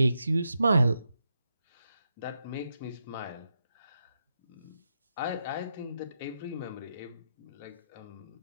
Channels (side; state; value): both; inverted; correlation -0.84